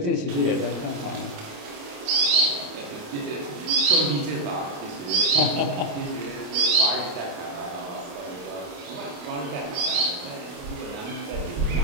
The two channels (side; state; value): left; late; 29 ms